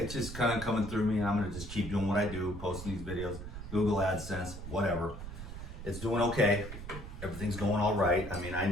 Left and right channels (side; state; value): right; noise; rumble, 10 dB below the sound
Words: just kind of coming through me, and I'm going to just keep doing what I do, posting these videos, Google AdSense, whatever. It's doing okay. Everything's going all right. I mean, I